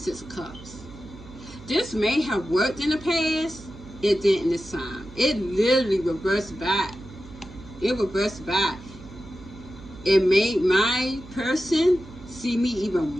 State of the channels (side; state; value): right; noise; hum, 18 dB below the sound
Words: of Cups. This may have worked in the past. It didn't this time. It literally reversed back. It reversed back. It made my person see me even